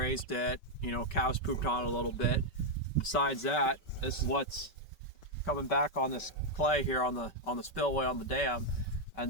it, cows pooped on it a little bit. Besides that, this is what's coming back on this clay here on the spillway on the dam,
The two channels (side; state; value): right; late; 5.2 ms